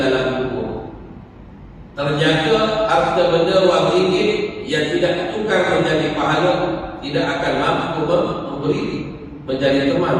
dalam kubur. Ternyata harta benda wang ringgit yang tidak tukar menjadi pahala tidak akan mampu memberi menjadi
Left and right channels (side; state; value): both; identical; correlation 1.00